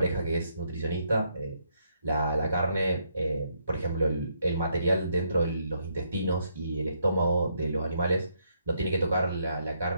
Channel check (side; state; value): both; inverted; correlation -0.75